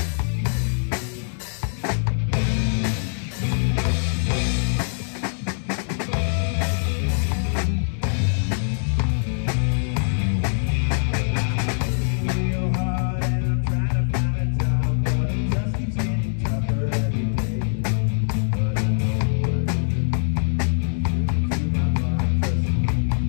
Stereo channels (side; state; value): right; silent; digital silence